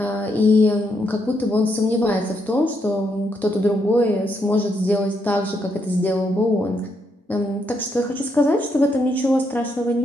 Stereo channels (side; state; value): both; normal; correlation 0.77